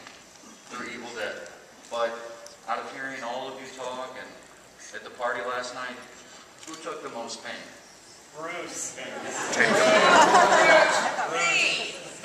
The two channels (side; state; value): both; identical; correlation 1.00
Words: through Evil Dead, but out of hearing all of you talk and at the party last night, who took the most pain? Bruce.